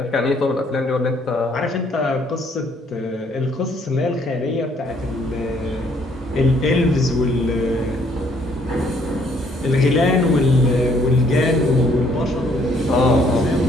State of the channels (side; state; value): both; normal; correlation 0.65